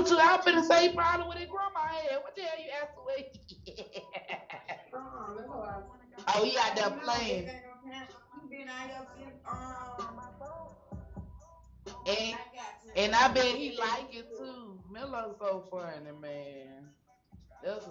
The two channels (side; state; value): both; identical; correlation 1.00